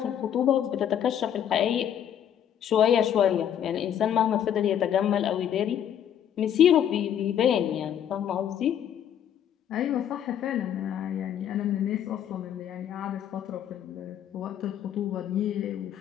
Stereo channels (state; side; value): quieter; right; 9.7 dB